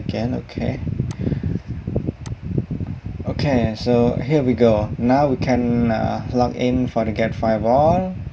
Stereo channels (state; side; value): identical; both; correlation 1.00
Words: Okay, so here we go. Now we can log in FortiGate Firewall